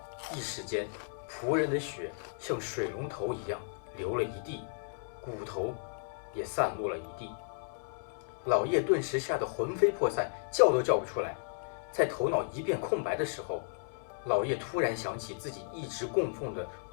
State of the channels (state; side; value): silent; right; 55 dB below the other